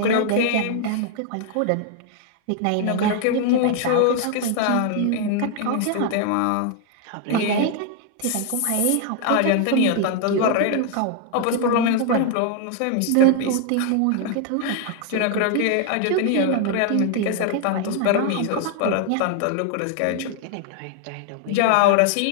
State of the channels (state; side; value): different; both; correlation 0.00